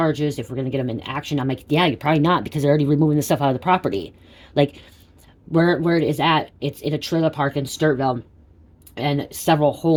If we're going to get them in action." I'm like, "Yeah, you're probably not because they're already removing the stuff out of the property." Like, where it is at, it's in a trailer park in Sturtville, and several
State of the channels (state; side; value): identical; both; correlation 1.00